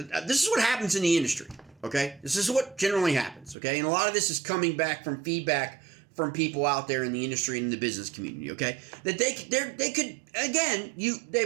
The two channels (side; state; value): left; drops out; at 3.6 s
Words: is what happens in the industry, okay? This is what generally happens, okay? And a lot of this is coming back from feedback from people out there in the industry and in the business community, okay? That they could again,